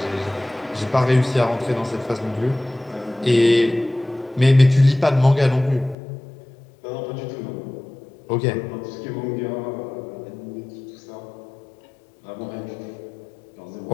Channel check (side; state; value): right; drops out; at 6.0 s